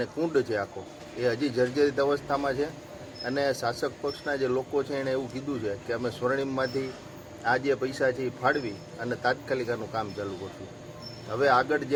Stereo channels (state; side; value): identical; both; correlation 1.00